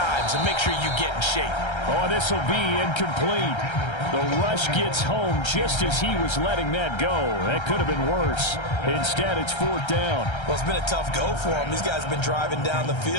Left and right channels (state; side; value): late; right; 1.3 ms